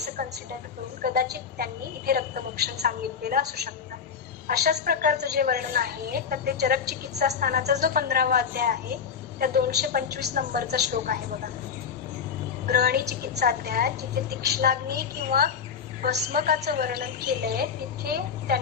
कन्सिडर करून कदाचित त्यांनी इथे रक्तमोक्षण सांगितलेलं असू शकतं. अशाच प्रकारचं जे वर्णन आहे तर ते चरक चिकित्सा स्थानाचा जो 15वा अध्याय आहे त्या 225 नंबरचा श्लोक आहे बघा, ग्रहणी चिकित्सा अध्याय, जिथे तीक्ष्णाग्नी किंवा भस्मकाचं वर्णन केलंय तिथे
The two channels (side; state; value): right; quieter; 6.7 dB